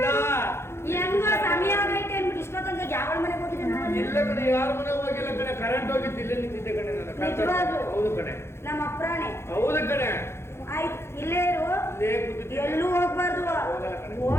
ಹೆಂಗೋ ಸಮಯ ಆಗೈತೆ ಅಂದ್ಬಿಟ್ಟು ಇಷ್ಟೊತ್ತಂಗ ಯಾವ ಮನೆಗೆ ಹೋಗಿದ್ದೆ ನಾನು? ಎಲ್ಲ ಕಡೆ ಯಾರ ಮನೆ ಹೋಗಿಲ್ಲ ಕಡೆ. ಕರೆಂಟ್ ಹೋಗಿತ್ತು, ಇಲ್ಲೇ ನಿಂತಿದ್ದೆ ಕಡೆ ನಾನು. ನಿಜವಾಗ್ಲೂ? ಹೌದು ಕಡೆ, ನಮ್ಮ ಅಪ್ರಾಣೆ ಹೌದು ಕಡೆ. ಆಯ್ತು ಇಲ್ಲೇ ಇರು, ಇಲ್ಲೇ ಕೂತಿದ್ದೆ. ಎಲ್ಲೂ ಹೋಗ್ಬಾರ್ದು. ಹೋಗಲ್ಲ ಕಣೆ.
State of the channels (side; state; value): right; late; 0.12 ms